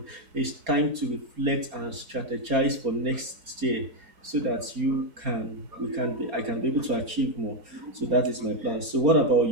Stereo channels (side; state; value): left; late; 4.3 ms